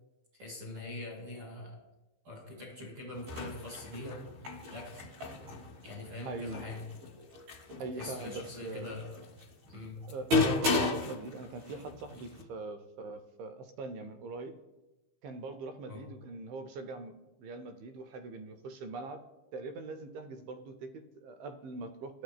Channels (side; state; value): left; late; 15 ms